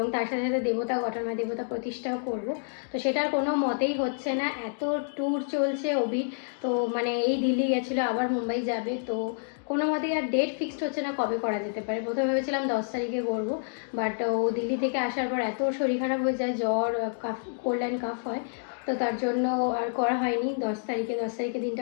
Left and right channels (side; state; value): right; silent; digital silence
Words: তার সাথে সাথে দেবতা ঘটনা দেবতা প্রতিষ্ঠাও করব। তো সেটার কোনো মতেই হচ্ছে না, এত ট্যুর চলছে অভির। তো মানে এই দিল্লি গেছিলো, আবার মুম্বাই যাবে, তো কোনো মতেই আর ডেট ফিক্সড হচ্ছে না কবে করা যেতে পারে। প্রথমে ভেবেছিলাম 10 তারিখে করবো, বাট ও দিল্লি থেকে আসার পর এত শরীর খারাপ হয়ে যায়, জ্বর, কাফ, কোল্ড অ্যান্ড কাফ হয়, তো তার জন্য আর করা হয়নি। 10 তারিখে দিনটা